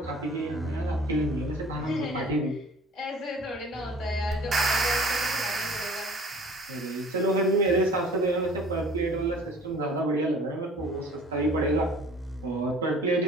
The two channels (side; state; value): both; normal; correlation 0.48